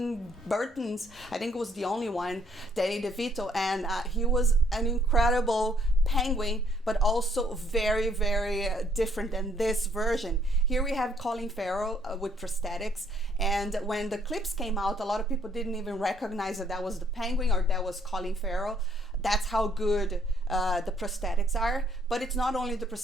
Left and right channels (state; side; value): normal; both; correlation 0.66